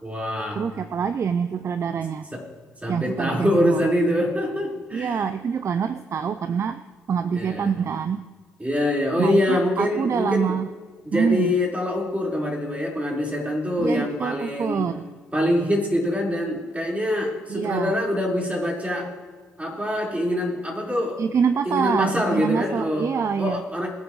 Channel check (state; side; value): normal; both; correlation 0.77